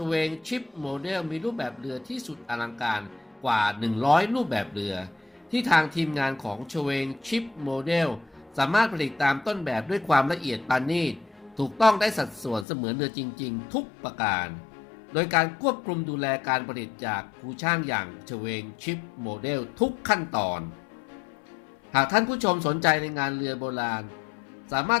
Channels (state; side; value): drops out; right; at 12.7 s